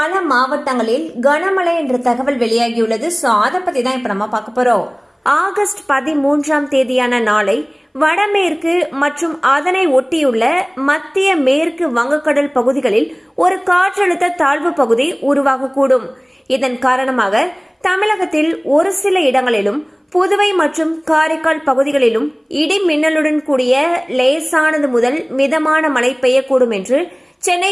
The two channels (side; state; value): both; identical; correlation 1.00